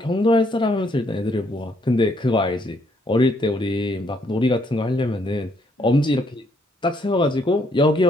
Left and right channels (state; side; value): normal; both; correlation 0.70